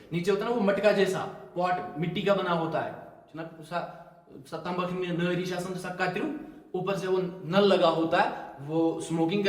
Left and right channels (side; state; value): both; identical; correlation 1.00